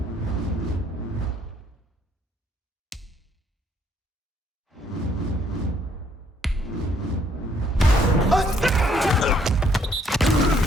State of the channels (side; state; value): both; normal; correlation 0.66